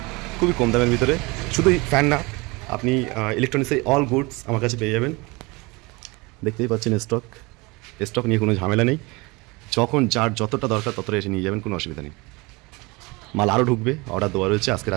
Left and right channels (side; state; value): left; quieter; 25.4 dB